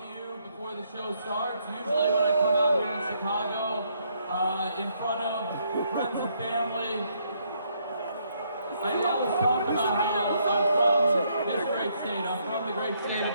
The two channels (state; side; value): inverted; both; correlation -0.72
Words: The show starts. Usually when I come out here in Chicago, in front of friends and family, I always talk about how I'm from this great state. I'm from the great state